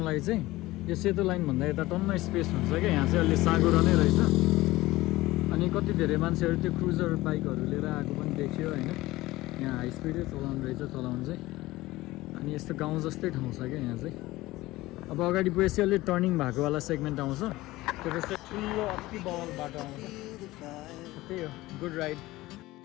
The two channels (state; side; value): quieter; right; 18.5 dB